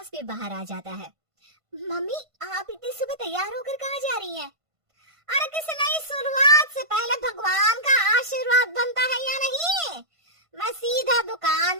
भी बाहर आ जाता है। मम्मी आप इतनी सुबह तैयार होकर कहाँ जा रही हैं? अरे किसी नई शुरुआत से पहले भगवान का आशीर्वाद बनता है या नहीं? मैं सीधा दुकान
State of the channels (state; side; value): late; left; 1.5 ms